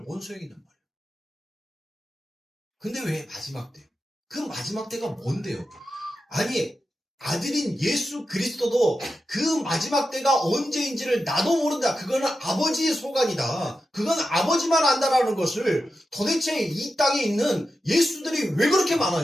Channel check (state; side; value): normal; both; correlation 0.90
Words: 뭔 소용이냔 말이에요. 근데 왜 마지막 때? 그 마지막 때가 뭔데요? 아니 아들인 예수 그리스도도 그 마지막 때가 언제인지를 나도 모른다. 그거는 아버지의 소관이다. 그건 아버지만 안다라는 것을 도대체 이 땅에 있는 예수들이 왜 그렇게